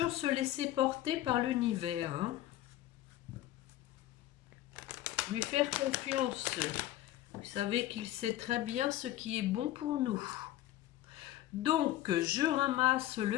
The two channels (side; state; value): right; quieter; 14.3 dB